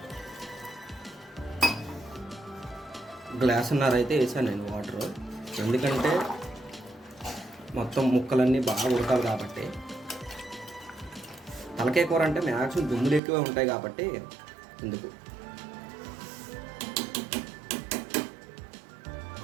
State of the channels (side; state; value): left; drops out; at 13.2 s